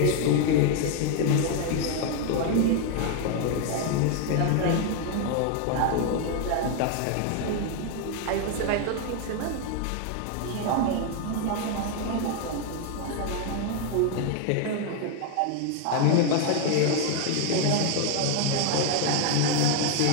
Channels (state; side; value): different; both; correlation 0.01